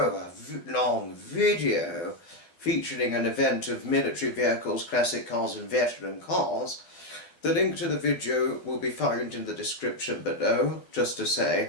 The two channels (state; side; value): late; right; 12 ms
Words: long video featuring an event of military vehicles, classic cars and veteran cars, the link to the video will be found in the description below, just to